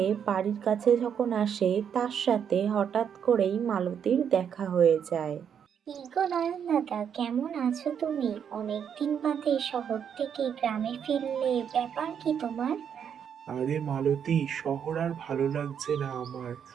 বাড়ির কাছে যখন আসে, তার সাথে হঠাৎ করেই মালতীর দেখা হয়ে যায়। কি গো নয়ন দাদা, কেমন আছো তুমি? অনেকদিন বাদে শহর থেকে গ্রামে ফিরলে, ব্যাপার কি তোমার? আরে মালতী, শহর আর ভালো লাগছে না আমার।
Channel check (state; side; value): quieter; left; 8.0 dB